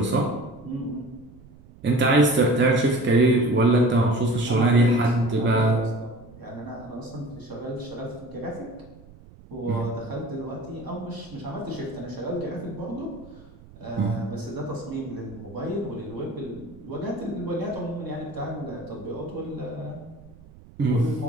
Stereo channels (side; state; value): right; noise; rumble, 22 dB below the sound